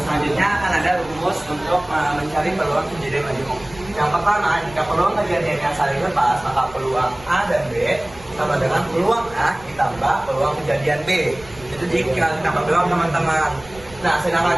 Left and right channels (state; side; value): noise; right; rumble, 21 dB below the sound